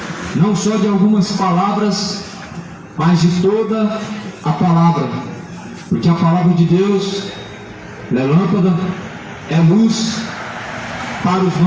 não só de algumas palavras, mas de toda a palavra, porque a palavra de Deus é lâmpada, é luz para os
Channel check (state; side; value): identical; both; correlation 1.00